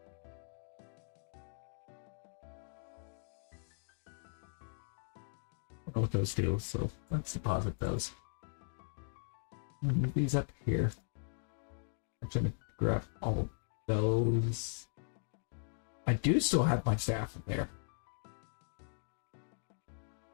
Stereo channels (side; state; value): right; silent; digital silence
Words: don't know what those do, so let's deposit those. Move these up here. I'm trying to grab all of those. I do still have my staff in there.